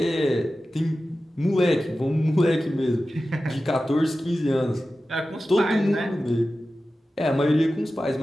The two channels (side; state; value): both; normal; correlation 0.94